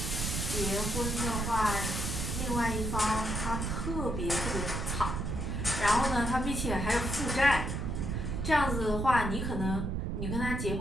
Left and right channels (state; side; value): noise; right; rumble, 2 dB below the sound